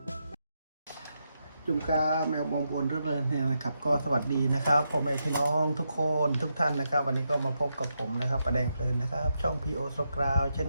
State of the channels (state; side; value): inverted; both; correlation -0.84